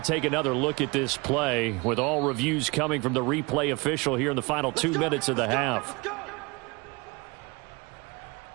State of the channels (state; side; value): quieter; left; 26.5 dB